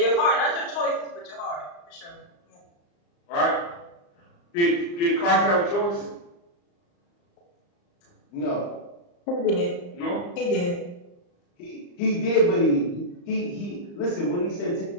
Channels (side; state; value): right; late; 34 ms